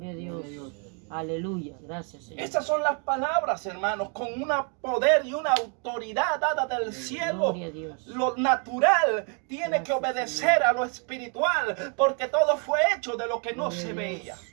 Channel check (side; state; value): left; quieter; 39.1 dB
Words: a Dios. Aleluya. Gracias, Señor. Esas son las palabras, hermanos, con un poder y una autoridad dada del cielo. Gloria a Dios. Lo natural tiene que Gracias, obedecer a lo espiritual, porque todo fue hecho de lo que no Gloria se a veía.